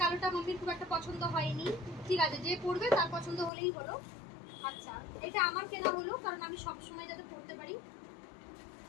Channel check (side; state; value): right; drops out; at 3.5 s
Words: কালোটা মাম্মির খুব একটা পছন্দ হয়নি। ঠিক আছে, যে পরবে তার পছন্দ হলেই হলো। আচ্ছা, এটা আমার কেনা হলো কারণ আমি সব সময় যাতে পরতে পারি।